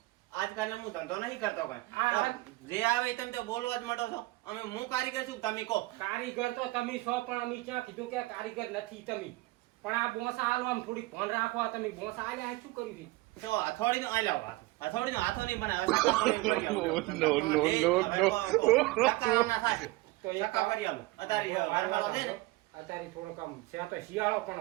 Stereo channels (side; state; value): left; quieter; 20.8 dB